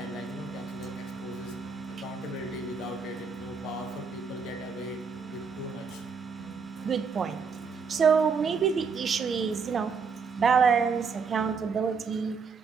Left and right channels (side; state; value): left; quieter; 5.4 dB